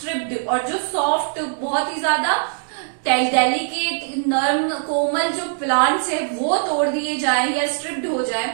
और जो सॉफ्ट बहुत ही ज्यादा डेलिकेट नर्म कोमल जो प्लांट्स है वो तोड़ दिए जाए या स्ट्रिप्ड हो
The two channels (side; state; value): left; silent; digital silence